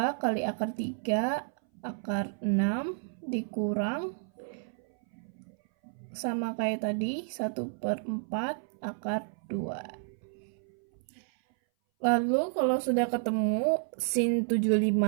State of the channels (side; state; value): left; silent; 57 dB below the other